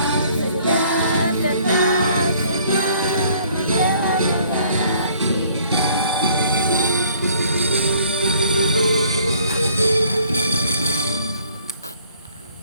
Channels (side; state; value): both; inverted; correlation -0.59